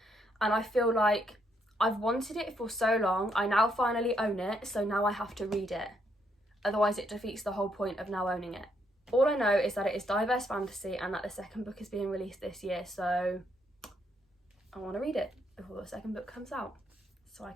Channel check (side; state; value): both; normal; correlation 0.74